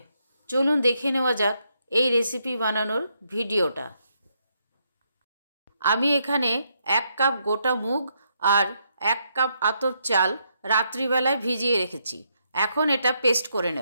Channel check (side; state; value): both; inverted; correlation -0.77